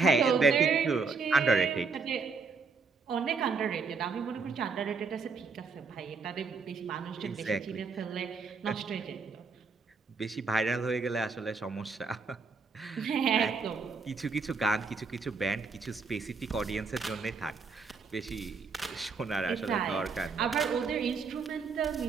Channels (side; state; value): left; quieter; 4.7 dB